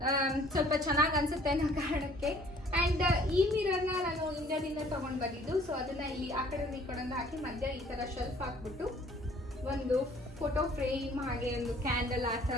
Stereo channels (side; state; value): both; normal; correlation 0.56